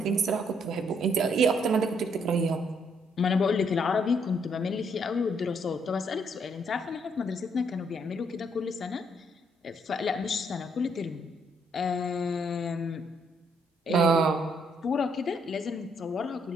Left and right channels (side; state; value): both; normal; correlation 0.71